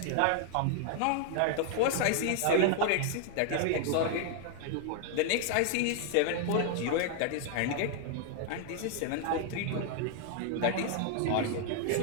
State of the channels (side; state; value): both; different; correlation 0.00